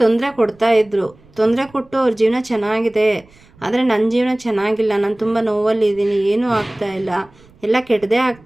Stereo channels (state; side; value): noise; right; rumble, 28 dB below the sound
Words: ತೊಂದರೆ ಕೊಡ್ತಾಯಿದ್ರು. ತೊಂದರೆ ಕೊಟ್ಟು ಅವ್ರ ಜೀವನ ಚೆನ್ನಾಗಿದೆ, ಆದರೆ ನನ್ನ ಜೀವನ ಚೆನ್ನಾಗಿಲ್ಲ, ನಾನು ತುಂಬ ನೋವಲ್ಲಿದ್ದೀನಿ, ಏನೂ ಆಗ್ತಾಯಿಲ್ಲ, ಎಲ್ಲ ಕೆಟ್ಟದೇ